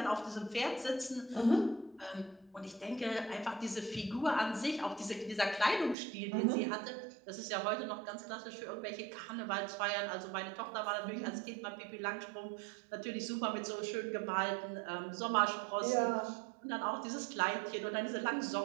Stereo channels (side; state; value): left; drops out; at 6.0 s